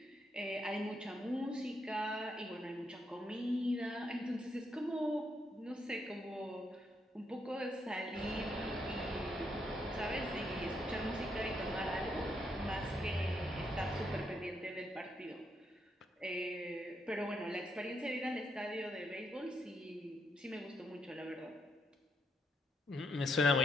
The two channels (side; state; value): both; normal; correlation 0.77